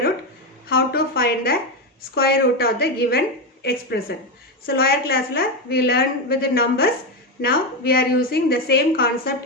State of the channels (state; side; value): normal; both; correlation 0.11